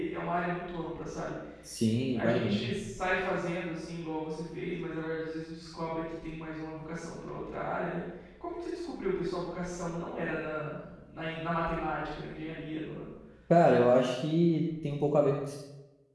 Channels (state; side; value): identical; both; correlation 1.00